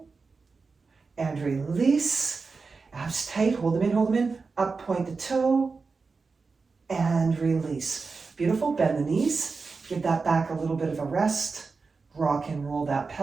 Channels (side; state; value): left; quieter; 4.5 dB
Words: and release. Abs tight, hold them in, up, point the toe, and release. Beautiful, bend the knees, give that back a little bit of a rest, rock and roll that